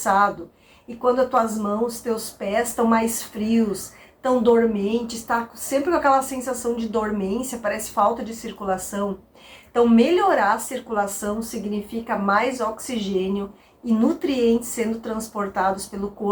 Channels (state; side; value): identical; both; correlation 1.00